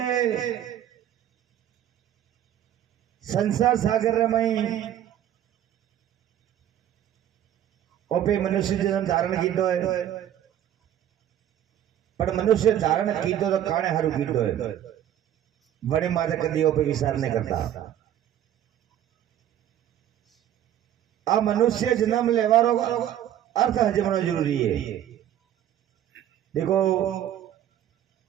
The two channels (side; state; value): left; quieter; 11.1 dB